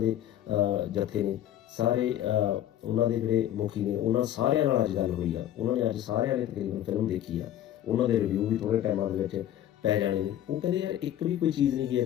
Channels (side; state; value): right; quieter; 11.9 dB